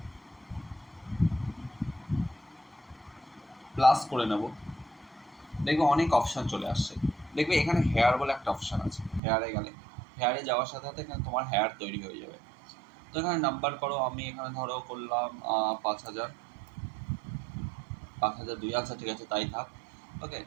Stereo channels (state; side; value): drops out; left; at 9.2 s